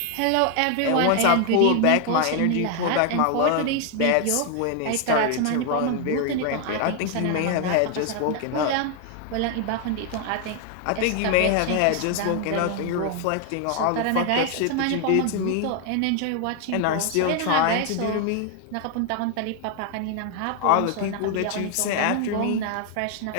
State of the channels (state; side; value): different; both; correlation 0.00